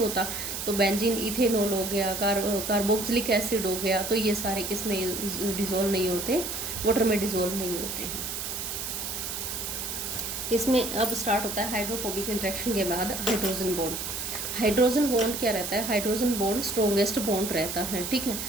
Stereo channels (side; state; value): right; noise; hiss, 4 dB below the sound